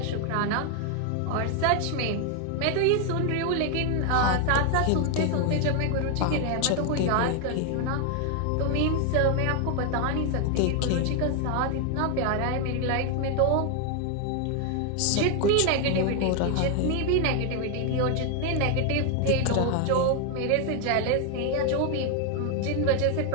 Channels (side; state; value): both; different; correlation 0.01